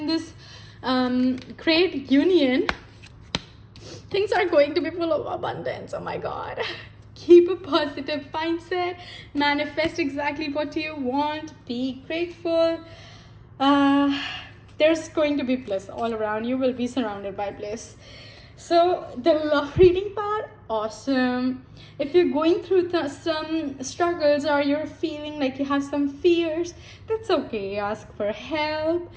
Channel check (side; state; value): both; identical; correlation 1.00